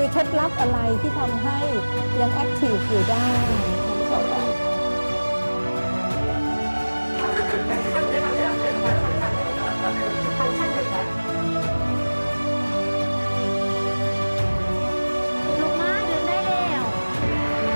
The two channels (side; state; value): both; inverted; correlation -1.00